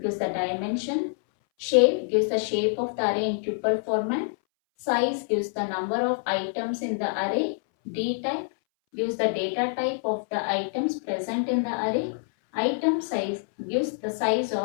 gives the dimension. Shape gives the shape of the array in tuple format. Size gives the number of items in the array. D type gives the data type of the items present in the array. Item size gives the size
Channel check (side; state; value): right; silent; 60 dB below the other